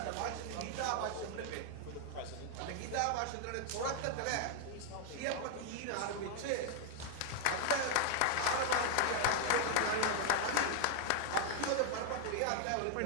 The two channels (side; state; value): both; different; correlation 0.00